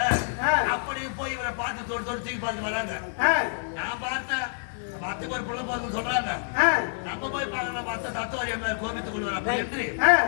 அப்படி போய் இவரை பார்த்து தொட்டு தூக்கி பார்த்து வராங்க. நான் பார்த்தேன் பத்துக்கு ஒரு பிள்ளை போதும் சொல்றாங்க. நம்ம போய் பார்க்கணும் பார்த்த தத்துவாரி அம்மையார் கோபித்துக் கொள்வார் அப்படி என்று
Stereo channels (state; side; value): silent; right; digital silence